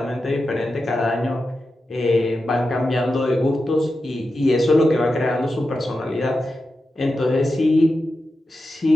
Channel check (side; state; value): both; normal; correlation 0.90